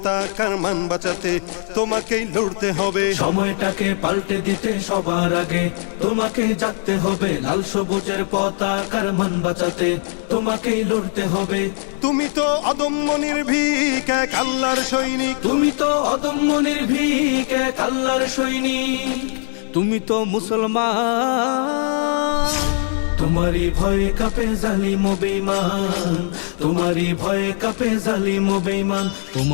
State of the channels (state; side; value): silent; right; digital silence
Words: মান বাঁচাতে তোমাকেই লড়তে হবে। সময়টাকে পাল্টে দিতে সবার আগে তোমাকেই জাগতে হবে। লাল সবুজের পতাকার মান বাঁচাতে তোমাকেই লড়তে হবে। তুমি তো অদম্য নির্ভীক এক আল্লাহর সৈনিক। তুমি তো অদম্য নির্ভীক এক আল্লাহর সৈনিক। তুমি তো মুসলমান। তোমারই ভয়ে কাঁপে জালিম ও বেঈমান। তোমারই ভয়ে কাঁপে জালিম ও বেঈমান।